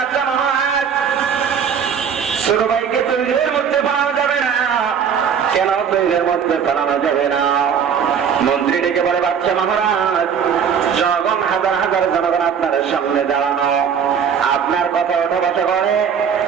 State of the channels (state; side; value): quieter; left; 7.4 dB